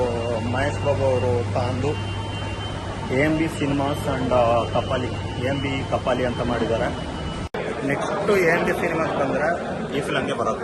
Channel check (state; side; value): identical; both; correlation 1.00